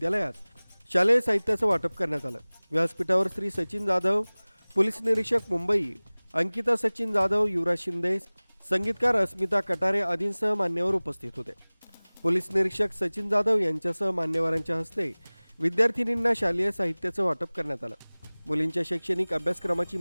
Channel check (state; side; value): inverted; both; correlation -1.00